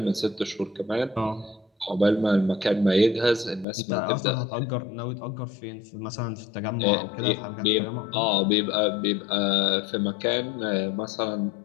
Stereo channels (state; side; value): drops out; right; at 3.7 s